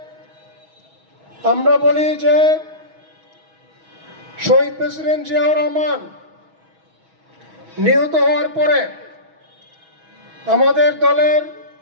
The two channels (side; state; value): left; late; 6.2 ms